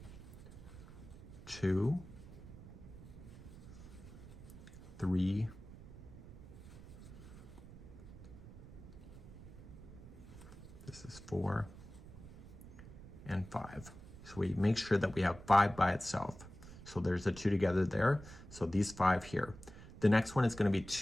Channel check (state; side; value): noise; right; rumble, 15 dB below the sound